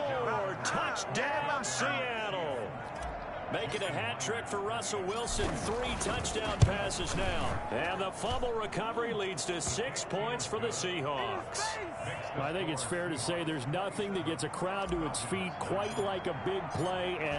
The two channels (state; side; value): identical; both; correlation 1.00